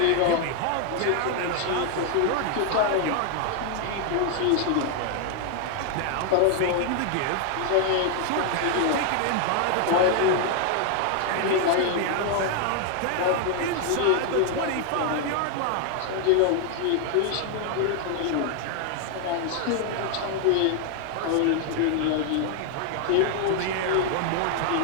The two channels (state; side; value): different; both; correlation 0.00